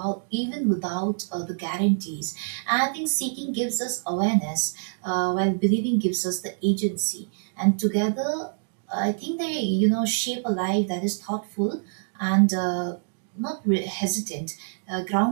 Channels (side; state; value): left; silent; digital silence